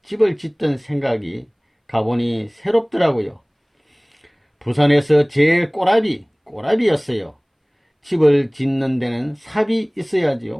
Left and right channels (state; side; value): identical; both; correlation 1.00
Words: 집을 짓던 생각이 가보니 새롭더라고요. 부산에서 제일 꼬라비였어요. 집을 짓는 데는 삽이